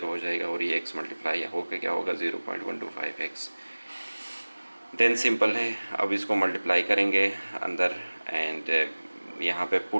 हो जाएगा, और ये x मल्टीप्लाई होकर क्या होगा, 0.125x। देन सिंपल है, अब इसको मल्टीप्लाई करेंगे अंदर, एंड यहाँ पे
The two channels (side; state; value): both; inverted; correlation -1.00